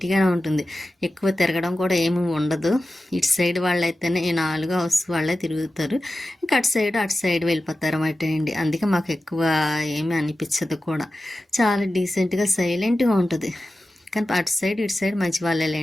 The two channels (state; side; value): normal; both; correlation 0.94